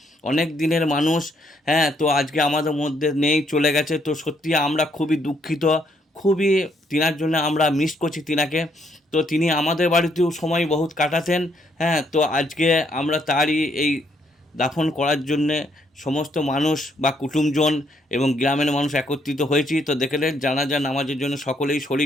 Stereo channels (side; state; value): both; normal; correlation 0.72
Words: অনেক দিনের মানুষ। হ্যাঁ, তো আজকে আমাদের মধ্যে নেই, চলে গেছে। তো সত্যি আমরা খুবই দুঃখিত, খুবই তিনার জন্য আমরা মিস করছি তিনাকে। তো তিনি আমাদের বাড়িতেও সময় বহুত কাটাতেন। হ্যাঁ, তো আজকে আমরা তারই এই দাফন করার জন্যে সমস্ত মানুষ বা কুটুমজন এবং গ্রামের মানুষ একত্রিত হয়েছি। তো দেখলেন জানাজা নামাজের জন্য সকলেই